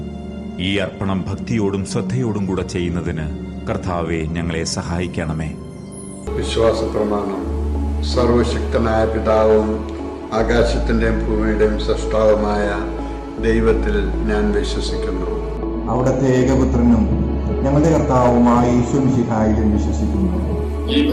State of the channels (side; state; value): both; identical; correlation 1.00